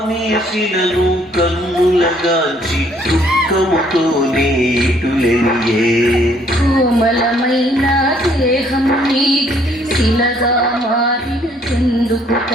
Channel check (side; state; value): both; normal; correlation 0.64